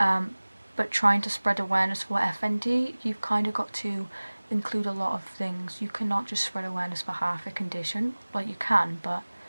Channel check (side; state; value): both; inverted; correlation -1.00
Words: trying to spread awareness for FND, you've kind of got to include a lot of things. You cannot just spread awareness for half a condition. Like, you can, but